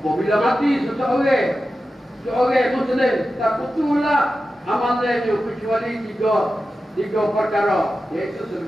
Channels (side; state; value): both; normal; correlation 0.93